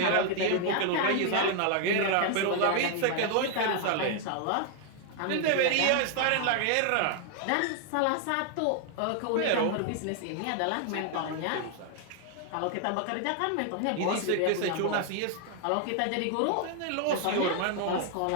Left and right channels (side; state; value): both; different; correlation 0.00